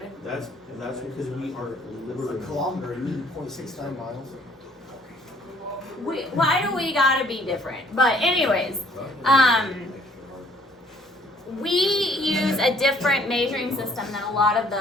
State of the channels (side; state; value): both; normal; correlation 0.60